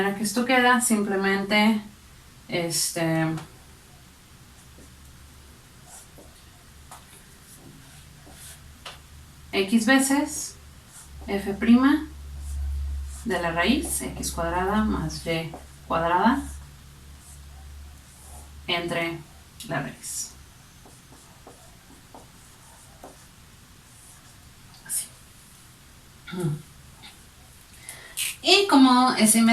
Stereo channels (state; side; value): identical; both; correlation 1.00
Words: que esto queda simplemente x veces f' de la raíz, x cuadrada más y cuadrada entre la raíz. Así. Y